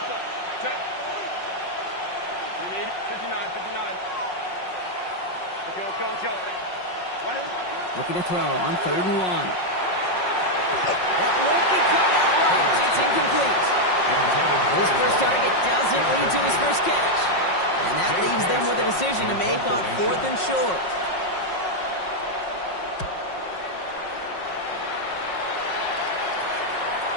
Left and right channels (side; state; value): right; late; 5.5 ms